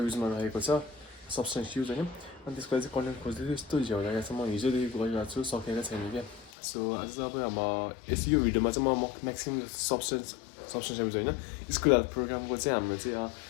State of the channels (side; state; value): right; drops out; at 6.5 s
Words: रहेको छ सब्सटेन्स युज होइन अनि त्यसको लागि चाहिँ कन्टेन्ट खोज्दैछु यस्तो झ्याउ लागेको छ म हिजोदेखि गरिरहेको छु सकेको छैन क्या सो आज चाहिँ अब यो भिडियोमा चाहिँ म म्याक्सिमम् सब्सटेन्स एब्युज होइन स्कुल हेल्थ प्रोग्रामको चाहिँ हाम्रो चाहिँ